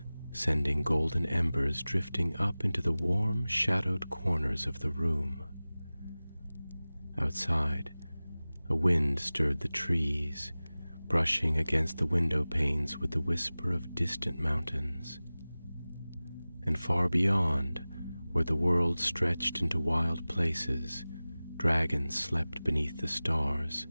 sending golden embers drifting up into the warm, shadowed corners of the room. Outside, a wind stirred the trees, brushing against the window panes with the whisper of distant mountains. And far beyond, where the world stretched into wild places, dragons slept beneath the stars,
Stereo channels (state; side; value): inverted; both; correlation -0.98